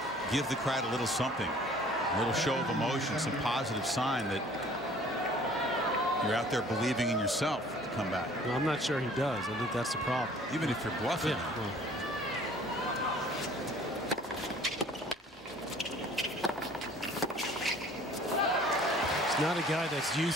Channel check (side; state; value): both; normal; correlation 0.52